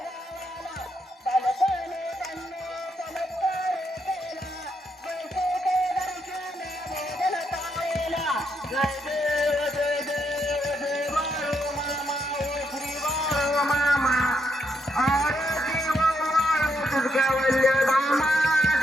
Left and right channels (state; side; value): normal; both; correlation 0.78